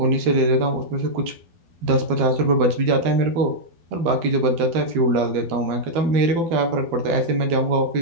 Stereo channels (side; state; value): left; late; 12 ms